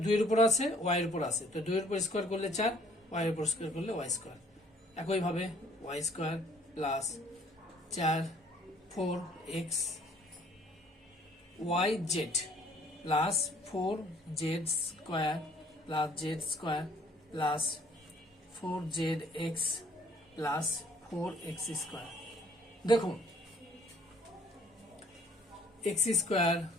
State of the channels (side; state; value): both; normal; correlation 0.59